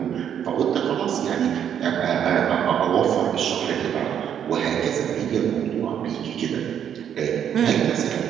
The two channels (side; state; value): left; quieter; 9.0 dB